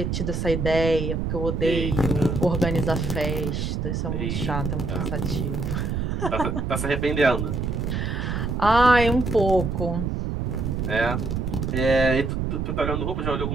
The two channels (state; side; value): noise; right; rumble, 1 dB below the sound